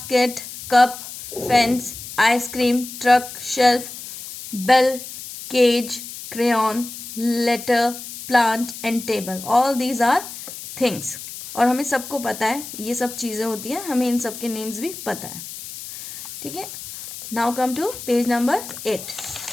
cup, fence, ice cream, truck, shelf, bell, cage, crayon, letter, plant and table. All these are things. और हमें सबको पता है ये सब चीज़ें होती हैं, हमें इन सब के नेम्स भी पता है, ठीक है। Now come to page number 8।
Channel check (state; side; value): noise; left; hiss, 11 dB below the sound